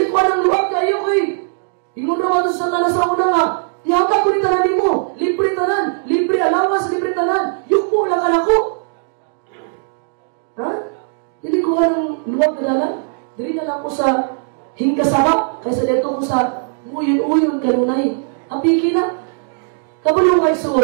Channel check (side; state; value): left; silent; digital silence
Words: ko anang luwag kayo, oy! Ingon naman sa Satanas sa una nga, ihatag ko ni tanan mo. Libre tanan. Libre alawas, libre tanan. Yukbo lang ka na ko. Ha? Dili ko anang luwag ka dalan. Dili na lang ko sa hingkasabak, kaysa dito ko sa uyon-uyon kanunay. Ang piki na. Kabulong kay